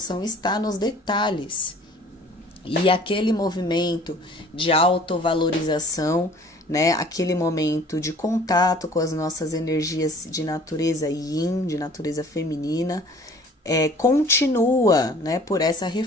está nos detalhes. E aquele movimento de autovalorização, né? Aquele momento de contato com as nossas energias de natureza yin, de natureza feminina, continua, né? Por essa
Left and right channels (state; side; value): normal; both; correlation 0.50